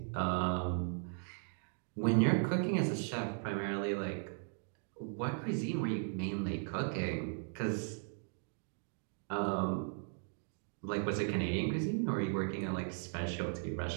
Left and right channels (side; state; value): left; silent; 53 dB below the other